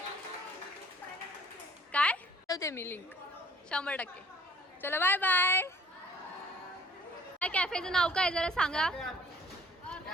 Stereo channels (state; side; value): normal; both; correlation 0.56